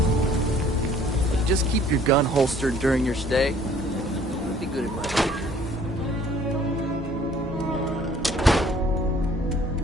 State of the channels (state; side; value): normal; both; correlation 0.56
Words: Just keep your gun holstered during your stay. It'd be good advice.